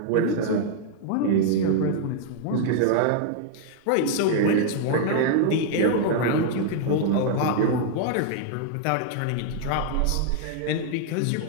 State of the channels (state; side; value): different; both; correlation -0.01